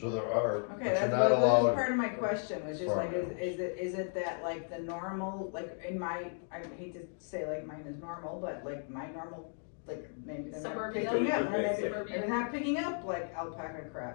there are, Okay, but that's you're not that was allowed. part of my question, was just like, farm is it that like the normal, like in my, I hate to say like mine is normal, but like my normal, like maybe they're not Suburbia. picking up, Suburbia. they're not picking up like alpaca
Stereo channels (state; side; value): silent; right; 54 dB below the other